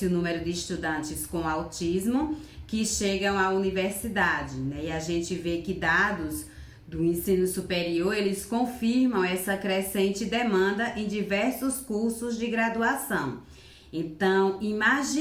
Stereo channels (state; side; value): identical; both; correlation 1.00